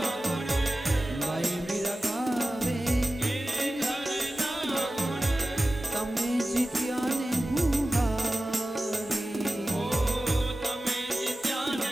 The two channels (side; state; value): both; normal; correlation 0.95